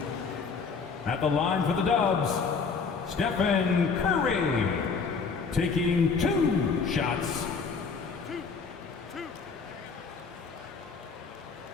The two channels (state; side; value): quieter; right; 5.2 dB